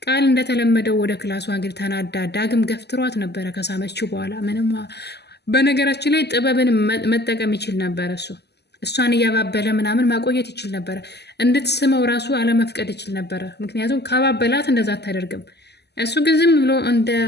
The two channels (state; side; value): late; right; 0.49 ms